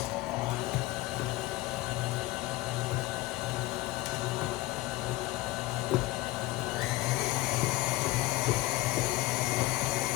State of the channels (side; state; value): right; quieter; 18.4 dB